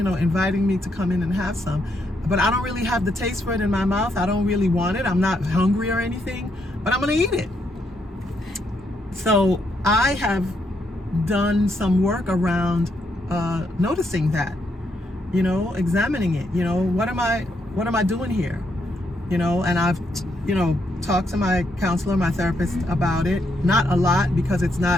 me to come in and have some. But I don't really have the taste for it in my mouth. I don't really want it. I'm not hungry or anything, but I'm going to eat it. So I have done some work around noticing that, examining it. What am I doing here? And I've, talked to my counselor, my therapist about it. Not a lot, because it's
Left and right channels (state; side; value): normal; both; correlation 0.77